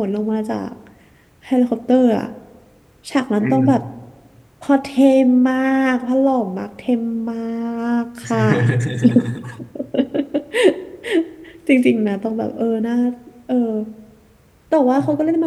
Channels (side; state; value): both; identical; correlation 1.00